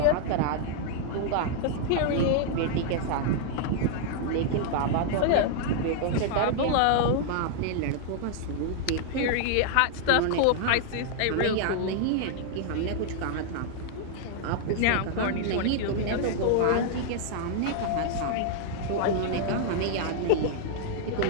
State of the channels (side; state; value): both; different; correlation -0.01